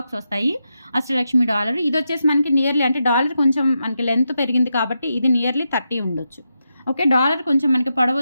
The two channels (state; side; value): inverted; both; correlation -0.86